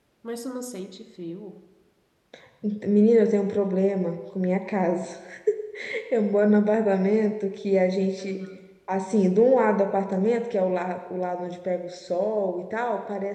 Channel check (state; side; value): identical; both; correlation 1.00